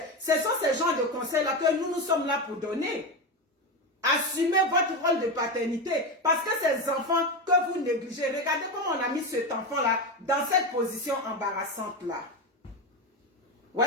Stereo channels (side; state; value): both; normal; correlation 0.16